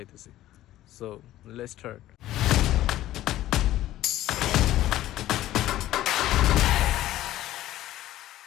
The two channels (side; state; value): right; quieter; 14.3 dB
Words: So let's start.